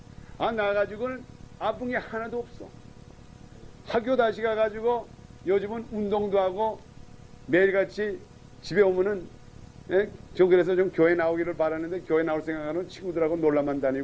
나가지고는 아픈 게 하나도 없어. 학교 다시 가가지고 요즘은 운동도 하고 매일같이 집에 오면은 저 그래서 좀 교회 나오기를 바랐는데 교회 나올 생각하는 친구들하고 놀러만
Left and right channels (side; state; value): both; identical; correlation 1.00